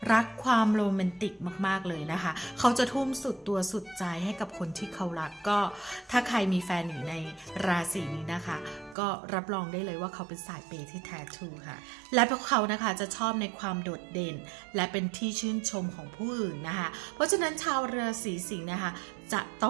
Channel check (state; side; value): drops out; left; at 9.0 s